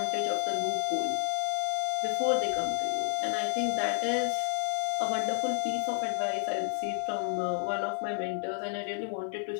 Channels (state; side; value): silent; right; 57 dB below the other